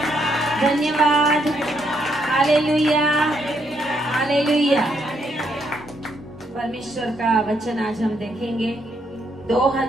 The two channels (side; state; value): both; normal; correlation 0.75